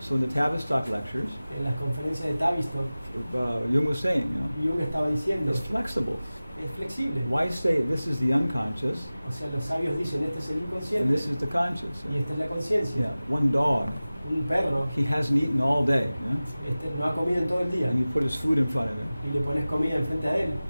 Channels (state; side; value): inverted; both; correlation -0.97